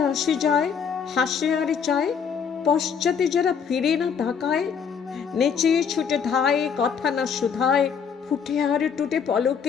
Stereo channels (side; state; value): right; quieter; 6.8 dB